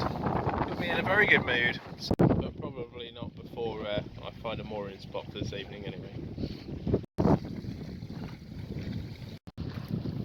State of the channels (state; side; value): identical; both; correlation 1.00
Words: me in a very good mood. But probably not before I find a mooring spot for this evening anyway.